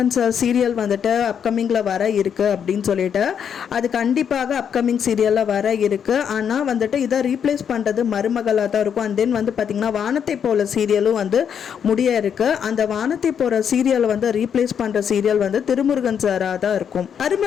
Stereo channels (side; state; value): right; quieter; 7.9 dB